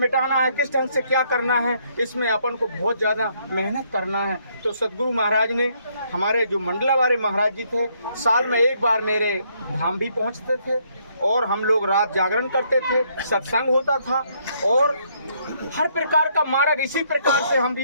है, किस ढंग से क्या करना है, इसमें अपन को बहुत ज़्यादा मेहनत करना है। तो सदगुरु महाराज ने, हमारे जो मंडलावारे महाराज जी थे, साल में एक बार मेरे धाम भी पहुंचते थे और हम लोग रात जागरण करते थे, सत्संग होता था और हर प्रकार का मार्ग इसी प्रकार से हम भी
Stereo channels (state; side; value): inverted; both; correlation -0.70